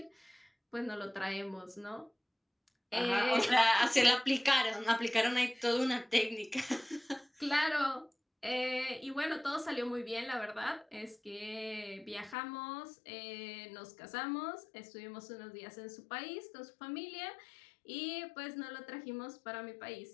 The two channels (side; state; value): right; drops out; at 12.4 s